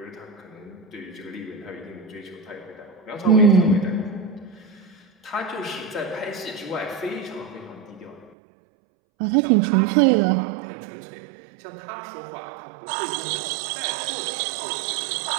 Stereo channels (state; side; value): drops out; left; at 8.3 s